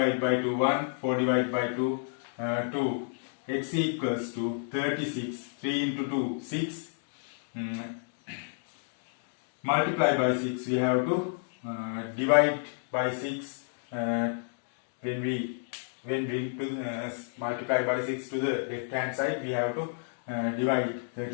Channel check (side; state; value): right; silent; digital silence